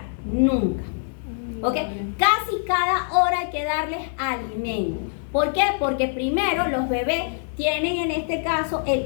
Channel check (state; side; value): silent; right; 63 dB below the other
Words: Nunca. ¿Ok? Casi cada hora hay que darles alimento. ¿Por qué? Porque primero los bebés tienen en este caso